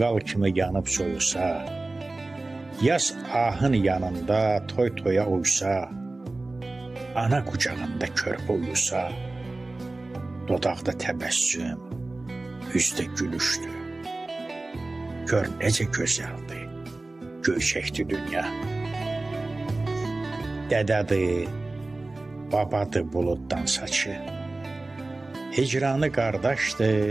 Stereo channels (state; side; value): quieter; left; 3.1 dB